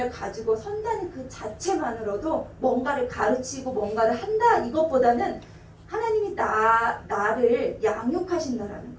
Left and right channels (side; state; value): both; identical; correlation 1.00